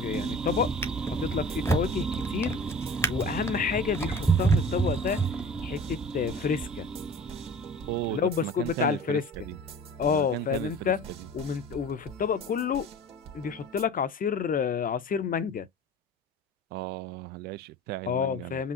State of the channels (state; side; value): normal; both; correlation 0.40